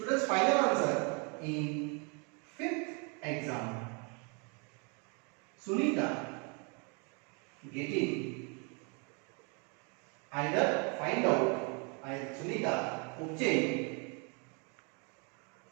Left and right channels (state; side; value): quieter; left; 34.5 dB